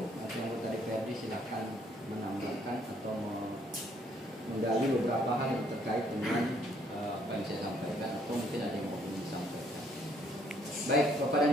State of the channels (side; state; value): both; normal; correlation 0.66